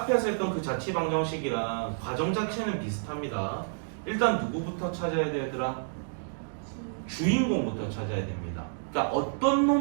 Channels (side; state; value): left; silent; digital silence